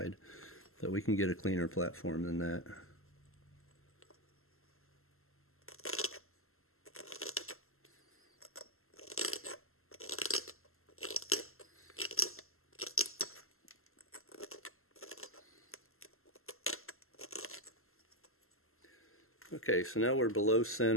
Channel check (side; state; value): right; late; 0.62 ms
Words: So we can get a cleaner platform than that. Okay, so now we're below